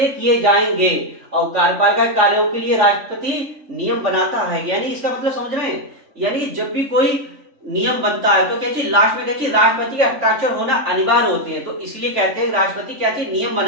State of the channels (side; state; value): left; late; 3.5 ms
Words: किए जाएंगे, और कार्यपालिका कार्यों के लिए राष्ट्रपति नियम बनाता है। यानी इसका मतलब समझ रहे हैं, यानी जब भी कोई नियम बनता है तो क्या चीज लास्ट में क्या चीज राष्ट्रपति के हस्ताक्षर होना अनिवार्य होते हैं, तो इसलिए कहते हैं राष्ट्रपति क्या चीज नियम